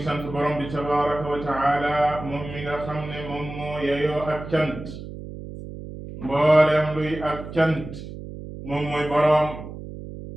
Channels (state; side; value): noise; right; hum, 11 dB below the sound